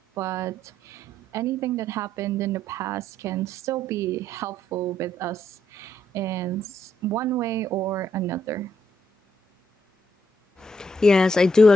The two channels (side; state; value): both; normal; correlation 0.74